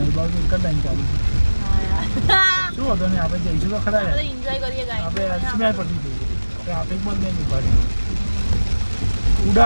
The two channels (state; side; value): inverted; both; correlation -1.00